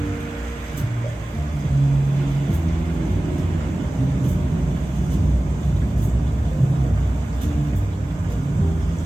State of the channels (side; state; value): both; normal; correlation 0.97